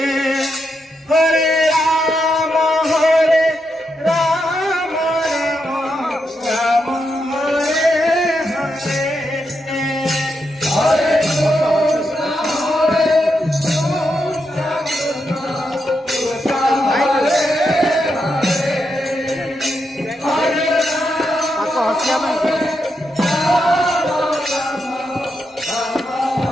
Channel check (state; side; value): normal; both; correlation 0.83